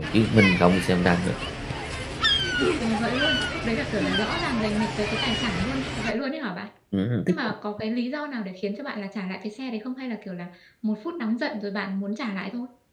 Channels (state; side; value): identical; both; correlation 1.00